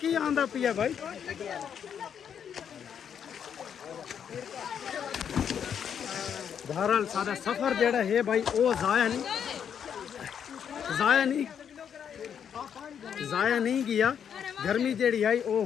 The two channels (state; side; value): quieter; right; 8.1 dB